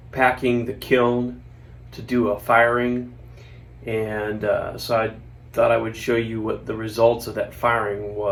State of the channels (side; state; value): both; identical; correlation 1.00